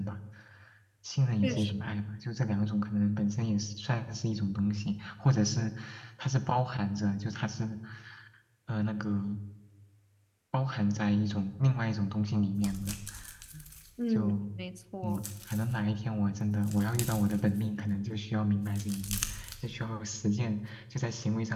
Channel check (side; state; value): both; identical; correlation 1.00